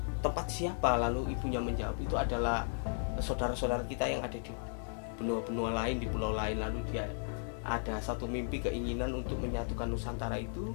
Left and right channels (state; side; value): silent; right; digital silence